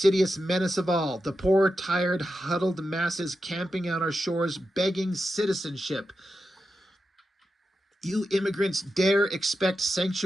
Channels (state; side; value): normal; both; correlation 0.89